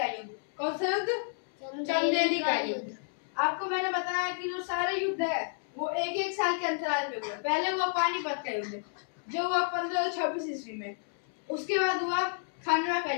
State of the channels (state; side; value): silent; right; 57 dB below the other